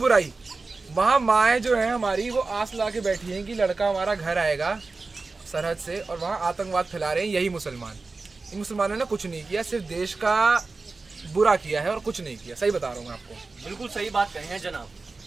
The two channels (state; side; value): quieter; left; 3.8 dB